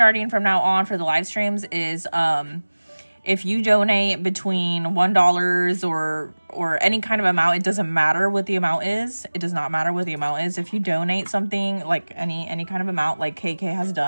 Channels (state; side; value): inverted; both; correlation -1.00